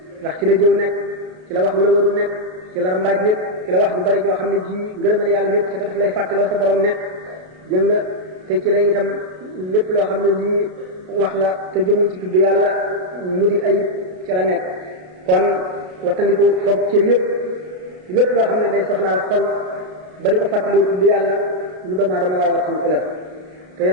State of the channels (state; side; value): late; left; 33 ms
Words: ndax ci la jëw nekk ci la wax lu la warul nekk ci la rambaaj nekk ci la wax ju bari joo xam ne ji ngërëmal yàlla nekk ci te daf lay fàttaloo sa borom nekk jëng nga te ci la itam lépp loo xam ne lii wax la te jëmul ci tudd yàlla mu di ayib ci la nekk kon wattandiku foog cër yépp lépp loo xam ne day soxlaal xol ba di ko fàttaloo tudd yàlla lu doomu aadama war a wattandiku la te